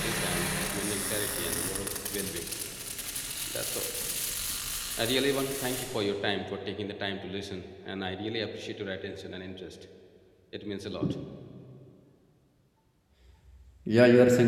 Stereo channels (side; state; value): both; identical; correlation 1.00